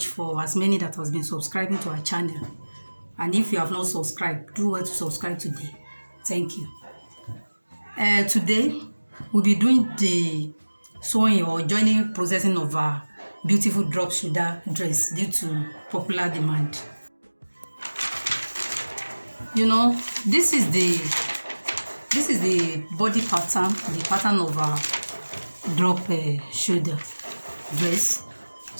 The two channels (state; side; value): inverted; both; correlation -1.00